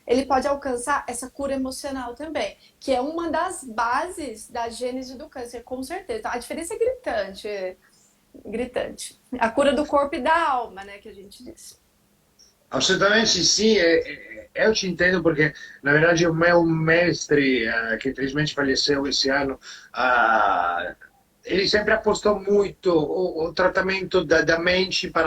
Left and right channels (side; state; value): both; identical; correlation 1.00